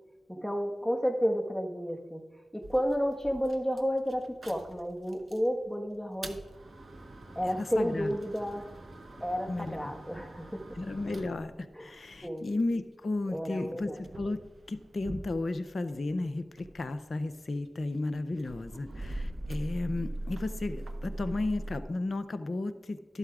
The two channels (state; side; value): normal; both; correlation 0.97